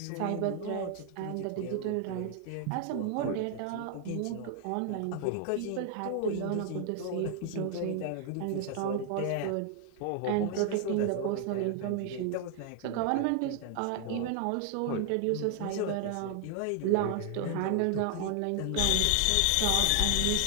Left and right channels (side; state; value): both; different; correlation 0.00